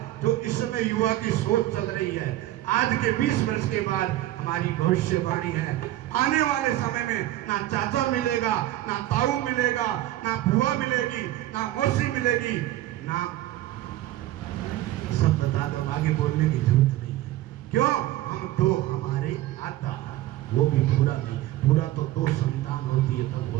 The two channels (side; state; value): left; quieter; 15.2 dB